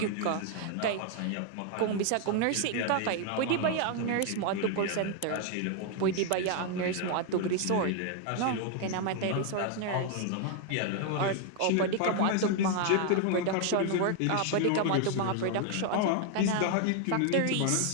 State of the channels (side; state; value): both; different; correlation 0.00